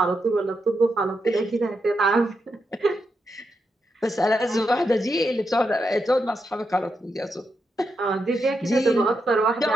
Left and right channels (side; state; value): both; normal; correlation 0.84